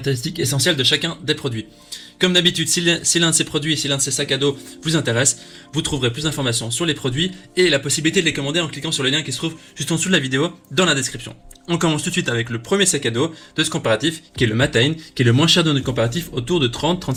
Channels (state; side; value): identical; both; correlation 1.00